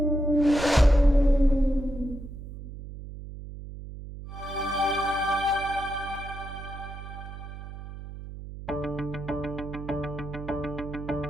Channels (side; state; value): right; noise; hum, 11 dB below the sound